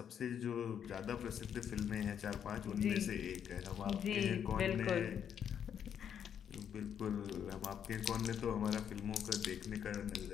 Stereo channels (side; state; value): right; quieter; 8.6 dB